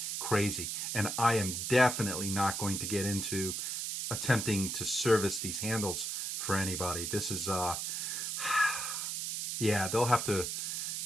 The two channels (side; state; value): right; noise; hiss, 3 dB below the sound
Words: crazy. And I am definitely not going to get into attempting to service these handles for anybody. This is, yeah, they'll have to